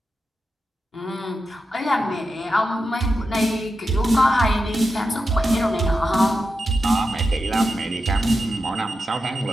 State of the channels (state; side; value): normal; both; correlation 0.89